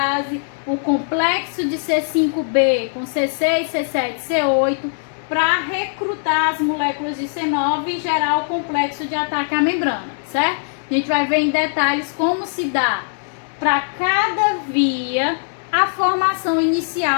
o complexo de C5b com C6, C7, C8, para recrutar as moléculas de C9 e gerar o complexo de ataque à membrana, certo? A gente vai ver em detalhes como se dá para cada via a formação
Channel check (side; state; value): right; silent; digital silence